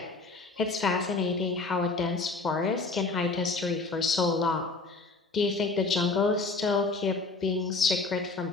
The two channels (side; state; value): right; quieter; 3.8 dB